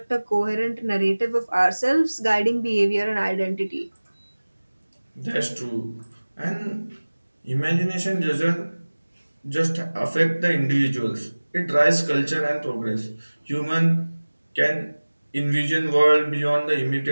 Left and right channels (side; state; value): both; inverted; correlation -1.00